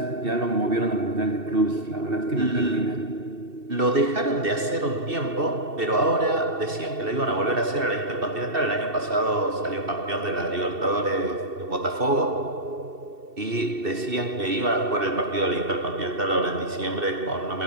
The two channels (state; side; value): late; left; 2.7 ms